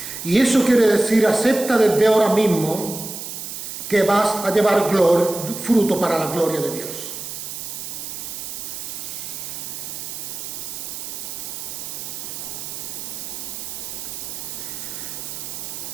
Y eso quiere decir, acepta desde ahora mismo que vas a llevar fruto para la gloria de Dios.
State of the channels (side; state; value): right; noise; hiss, 7 dB below the sound